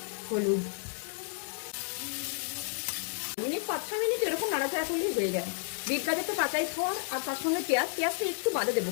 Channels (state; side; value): silent; right; digital silence